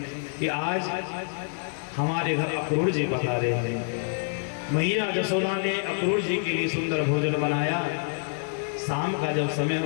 कि आज हमारे घर अक्रूर जी पधारे हैं। मैया यशोदा ने अक्रूर जी के लिए सुंदर भोजन बनाया। शाम का जब समय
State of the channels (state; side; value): silent; right; 60 dB below the other